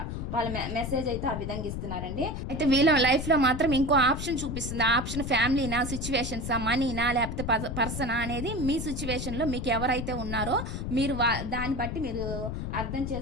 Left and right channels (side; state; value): left; noise; rumble, 5 dB below the sound